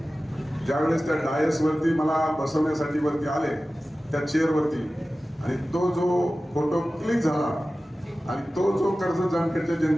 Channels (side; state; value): both; normal; correlation 0.96